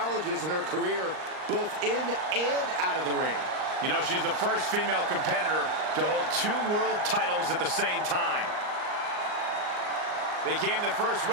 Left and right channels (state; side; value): late; left; 39 ms